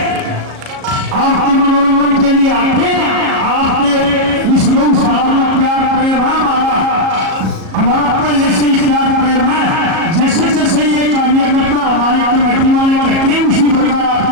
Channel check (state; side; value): late; left; 37 ms